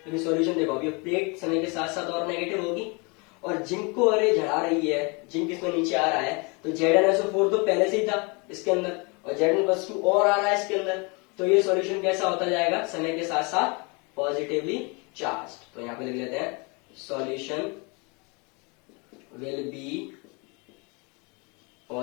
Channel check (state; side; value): quieter; right; 30.6 dB